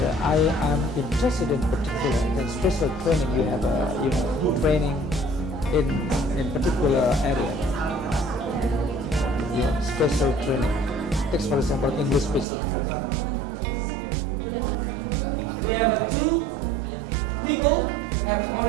I am interested in particular. Then special training, you have training in particular area. Yeah, special training. Take for example English special training. We have two people have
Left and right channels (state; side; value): drops out; left; at 12.5 s